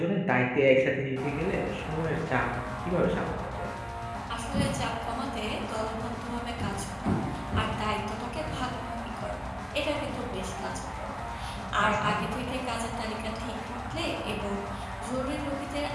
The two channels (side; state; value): both; identical; correlation 1.00